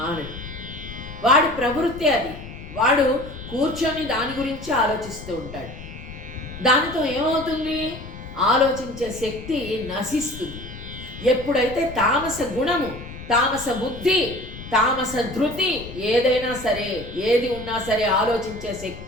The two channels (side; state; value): left; noise; rumble, 13 dB below the sound